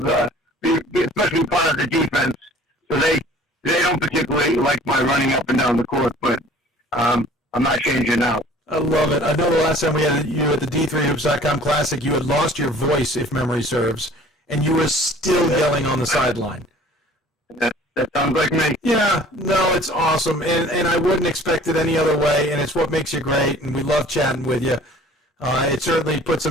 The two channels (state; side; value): normal; both; correlation 0.50